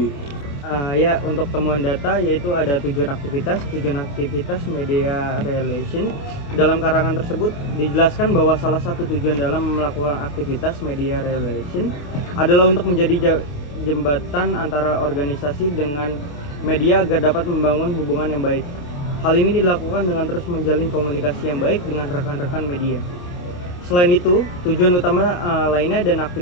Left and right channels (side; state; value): right; late; 28 ms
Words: Ya, untuk temuan data yaitu ada tujuan aktivitas media relation. Dalam karangan tersebut dijelaskan bahwa salah satu tujuan dalam melakukan aktivitas media relation adalah untuk menjadi jembatan antara organisasi dengan media agar dapat membangun hubungan yang baik. Hal ini dilakukan dengan terus menjalin komunikasi yang baik dengan rekan-rekan media. Selain itu, tujuan utama lainnya dan